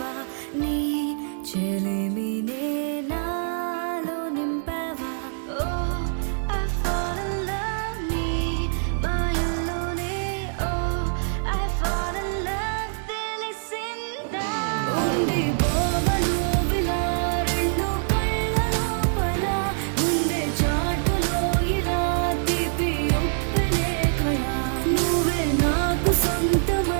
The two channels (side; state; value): left; silent; digital silence